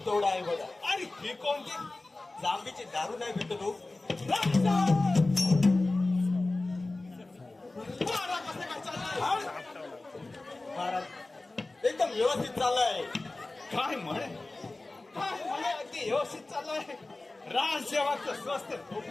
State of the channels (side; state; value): right; quieter; 3.0 dB